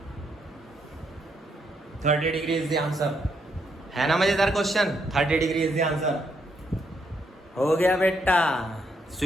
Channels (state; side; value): normal; both; correlation 0.76